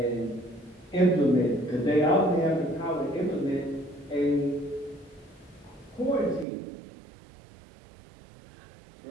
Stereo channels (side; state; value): left; drops out; at 6.5 s